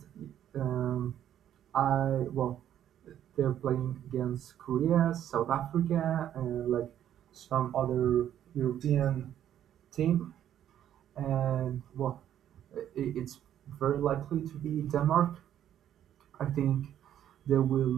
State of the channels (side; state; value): left; quieter; 10.8 dB